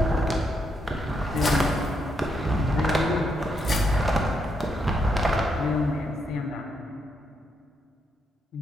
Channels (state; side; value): normal; both; correlation 0.78